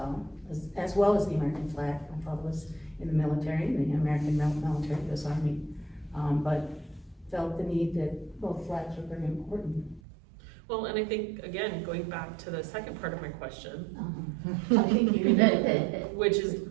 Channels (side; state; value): left; drops out; at 10.0 s